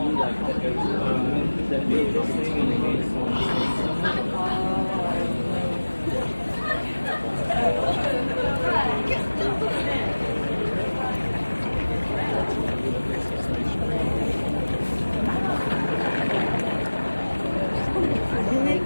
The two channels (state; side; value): inverted; both; correlation -1.00